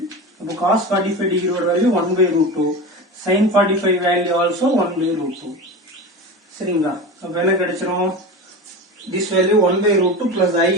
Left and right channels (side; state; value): both; normal; correlation 0.27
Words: அப்போ cos 45 டிகிரியோட value 1 by root 2. sin 45 value also 1 by root 2. சரிங்களா? அப்ப என்ன கிடைச்சிரும், this value 1 by root 2 plus I